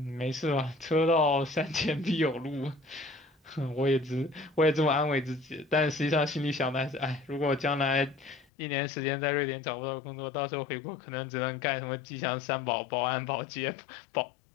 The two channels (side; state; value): right; drops out; at 8.5 s